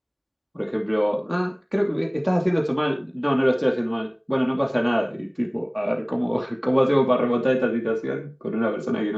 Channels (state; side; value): identical; both; correlation 1.00